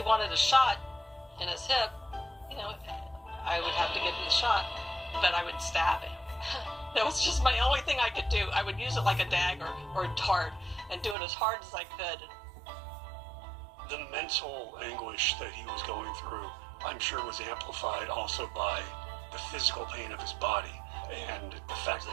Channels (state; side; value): drops out; left; at 11.2 s